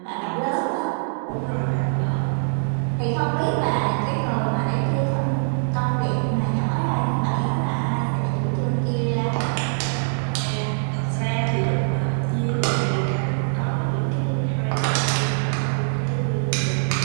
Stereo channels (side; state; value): left; silent; digital silence